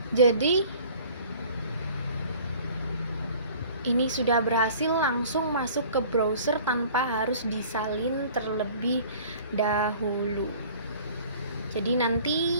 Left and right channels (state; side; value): inverted; both; correlation -0.48